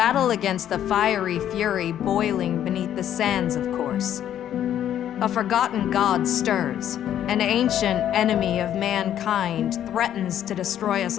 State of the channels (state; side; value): quieter; right; 10.7 dB